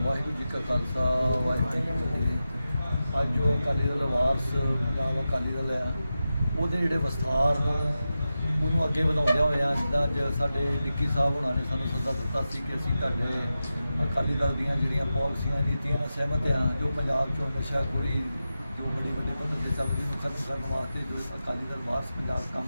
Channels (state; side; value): inverted; both; correlation -0.92